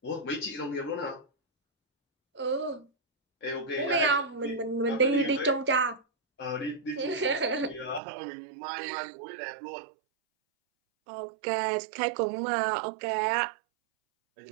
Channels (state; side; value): drops out; left; at 8.0 s